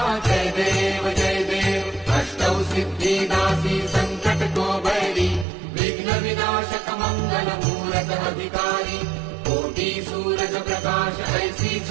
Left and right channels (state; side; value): drops out; left; at 5.5 s